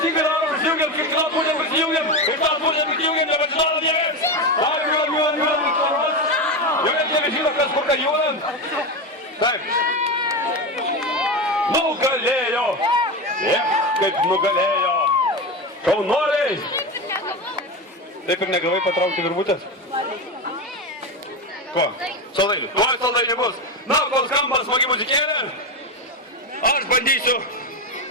daro, prisijungiam, kiekvieną pusę prisijungiam, ir tą pusę prisijungiam, nepažinodam niekas. Judam. Jau net nebežino, kas kur ką judam. Taip. Nugalėjo. Kaip nugalėjo. Šaunuoliai. Taip ir negavai patraukti virvutės? Ko? Saldainių. Ko saldainių bus? Na, kol skamba smagi muzikėlė, aš bandysiu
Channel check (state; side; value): normal; both; correlation 0.17